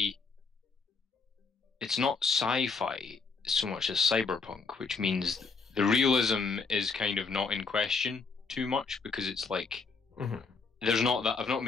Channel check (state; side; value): quieter; right; 4.7 dB